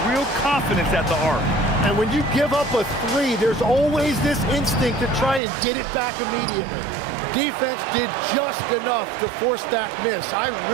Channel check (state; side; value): drops out; left; at 5.4 s